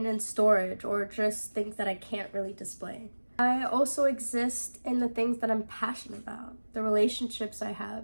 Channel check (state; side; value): inverted; both; correlation -1.00